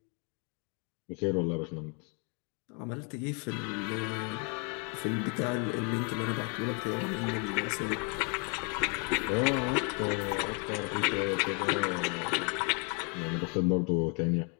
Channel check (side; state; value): right; quieter; 35.7 dB